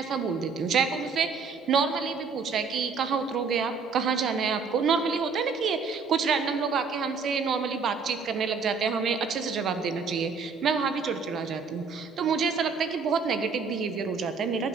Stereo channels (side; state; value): left; quieter; 5.2 dB